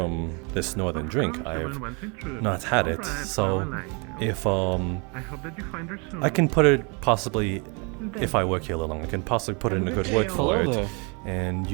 this northern drink. I've not had it, so if I can put it possibly, if I work here a little long, I can possibly put in a good word for it, and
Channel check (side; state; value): left; quieter; 32.9 dB